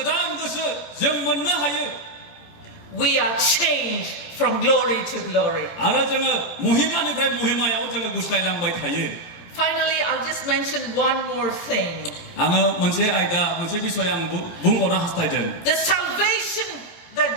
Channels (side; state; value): right; late; 17 ms